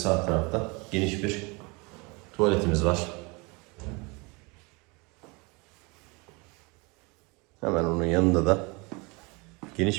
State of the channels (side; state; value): left; quieter; 27.7 dB